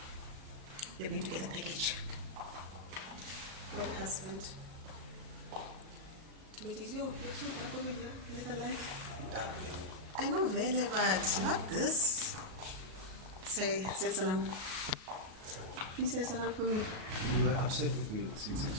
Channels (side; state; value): left; late; 37 ms